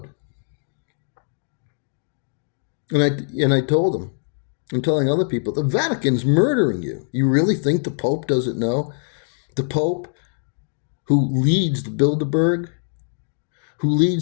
And I told him, I'm telling other people, the Vatican's murdering you. You really think the Pope doesn't know? The Pope, who leads the Bilderberg, who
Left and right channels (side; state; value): right; silent; digital silence